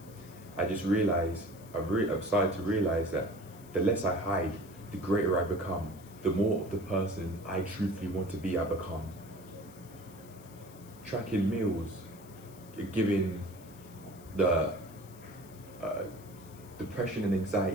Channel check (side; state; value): left; noise; hiss, 22 dB below the sound